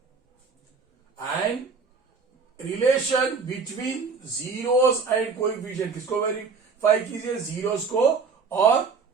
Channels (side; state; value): left; quieter; 5.0 dB